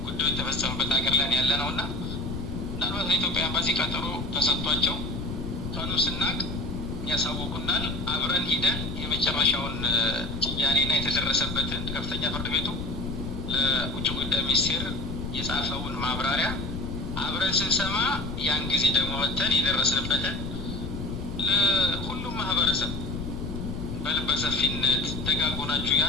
ጉዳዩ የተፈጸመበት ሀገር ላይ ያለ ነው እና ምናልባት ለኢትዮጵያ ኤምባሲ ቀጠሮ ተሰጥቷቸው ቀኑ ስናቅ ያሳውቁናል። አብረን ሂደን የመጨረሻውን ጭያኔና የተደረሰበትን ከፍተኛ ፍርድ ቤቱ ለውጭ ጉዳይ ሚኒስቴር የጻፈውን ማብራሪያ አብረን ስንሰማ ያን ጊዜ ደግሞ ወጥተን የደረስንበትን ለሁሉም ማህበረሰብ በልበ ሰፊነት ደጋጎናችሁ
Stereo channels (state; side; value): noise; left; rumble, 6 dB below the sound